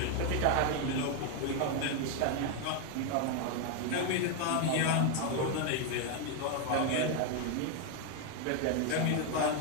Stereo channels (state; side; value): different; both; correlation 0.01